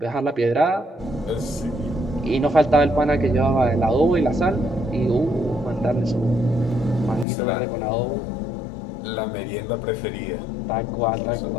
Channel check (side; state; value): right; drops out; at 7.2 s